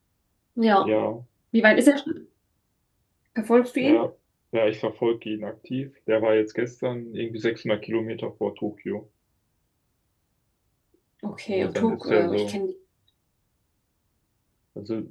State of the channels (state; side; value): identical; both; correlation 1.00